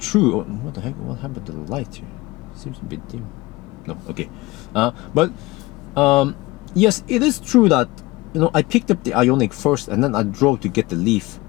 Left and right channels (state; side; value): quieter; right; 20.6 dB